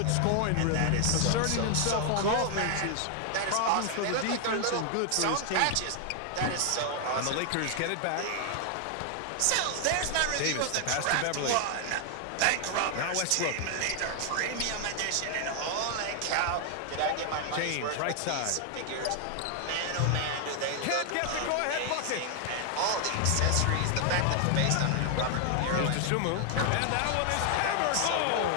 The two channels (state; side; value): different; both; correlation 0.00